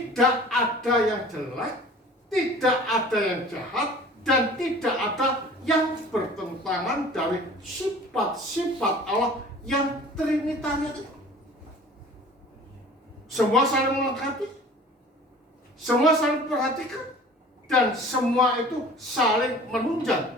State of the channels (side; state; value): both; normal; correlation 0.45